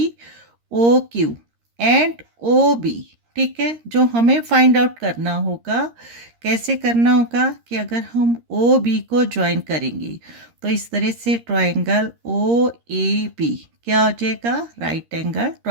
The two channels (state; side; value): late; left; 13 ms